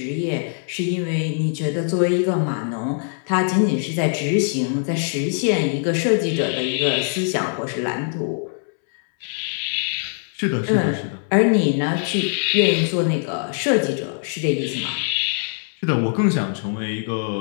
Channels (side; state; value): right; silent; 64 dB below the other